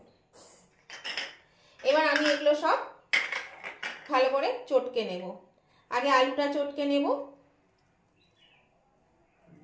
এবার আমি এগুলো সব ভালো করে চটকে নেব। আগে আলুটা চটকে নেব।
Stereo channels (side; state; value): both; identical; correlation 1.00